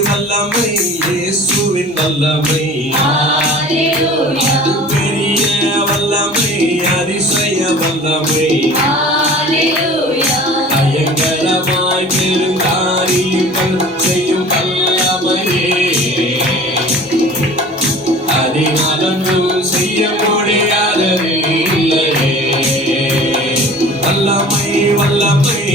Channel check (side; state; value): both; normal; correlation 0.43